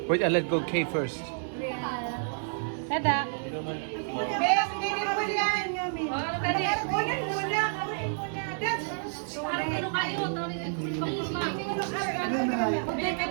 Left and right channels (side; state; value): left; silent; digital silence